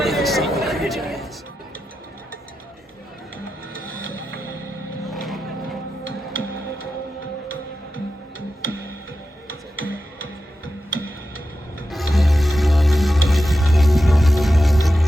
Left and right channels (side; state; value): both; normal; correlation 0.91